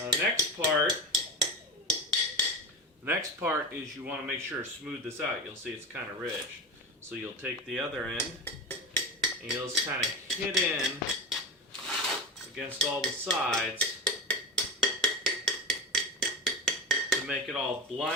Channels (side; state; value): both; normal; correlation 0.23